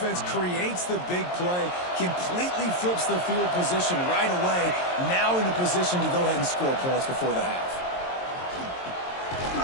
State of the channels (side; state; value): right; late; 22 ms